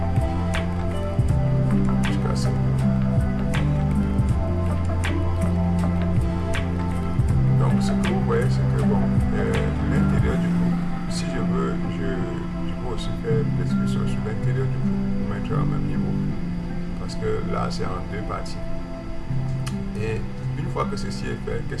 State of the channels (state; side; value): identical; both; correlation 1.00